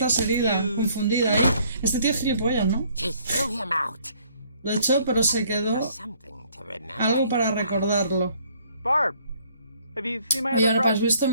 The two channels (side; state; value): both; inverted; correlation -0.62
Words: and herida, confused. confundida. Este tío es gilipollas, ¿no? She threw him out. Lo echó, pero se quedó Something to remember. algo para recordarlo. Barb, have you seen my Oye, other ahora, ¿has brush? visto